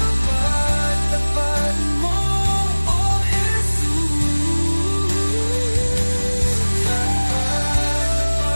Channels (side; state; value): both; inverted; correlation -1.00